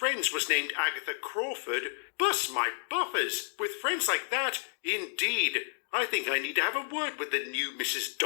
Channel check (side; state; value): right; silent; digital silence